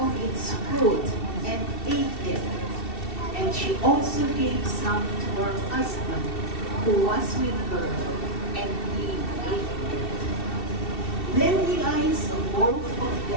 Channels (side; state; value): right; late; 2.7 ms